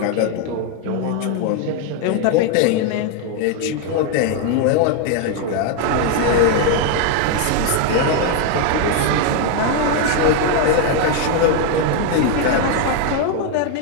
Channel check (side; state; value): both; different; correlation 0.01